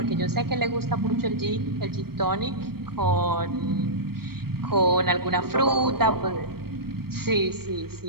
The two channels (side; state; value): left; late; 0.94 ms